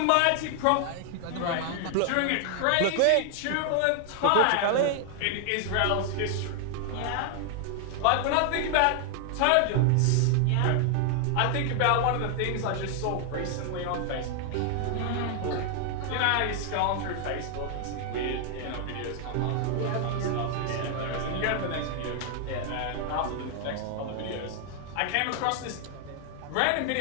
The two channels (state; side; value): different; both; correlation 0.00